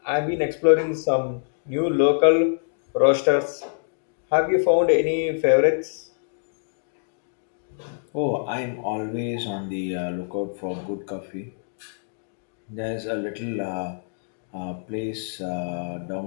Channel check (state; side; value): silent; right; digital silence